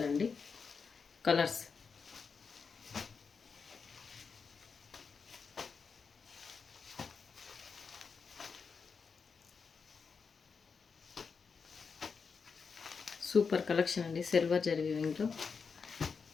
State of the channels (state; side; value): quieter; right; 5.5 dB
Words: అండి. కలర్స్ సూపర్ కలెక్షన్ అండి. సిల్వర్ జరీ వీవింగ్లో